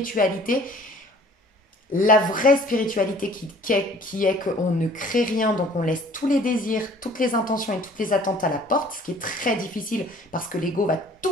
La vraie spiritualité qui est qu'on ne crée rien, donc on laisse tous les désirs, toutes les intentions et toutes les attentes à la porte, ce qui est très difficile parce que l'ego va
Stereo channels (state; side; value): normal; both; correlation 0.53